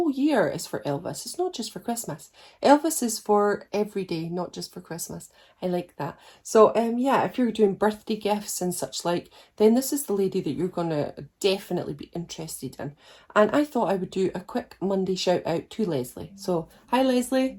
year is for Elvis. It's not just for Christmas. Elvis is for every day, not just for Christmas. I like that. So yeah, if you're doing birthday gifts and such like, then this is the lady that you're gonna definitely be interested in. And I thought I would do a quick Monday shout out to Leslie. So hi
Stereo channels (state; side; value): identical; both; correlation 1.00